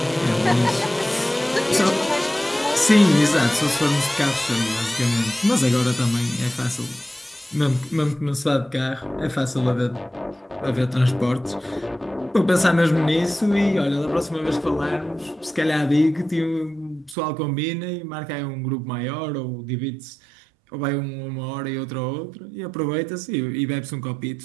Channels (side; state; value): left; drops out; at 17.2 s